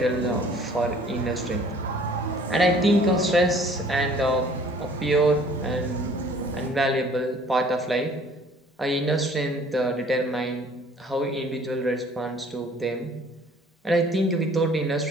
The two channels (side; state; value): both; normal; correlation 0.54